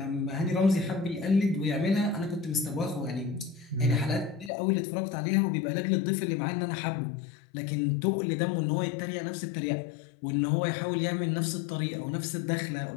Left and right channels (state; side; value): drops out; right; at 4.5 s